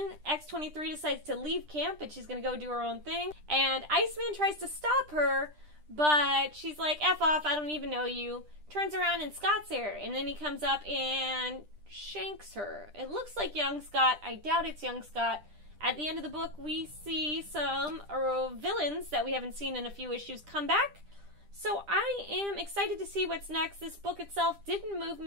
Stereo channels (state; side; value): late; left; 10 ms